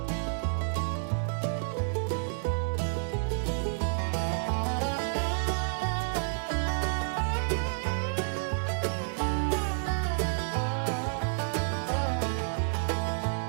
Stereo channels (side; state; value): left; silent; digital silence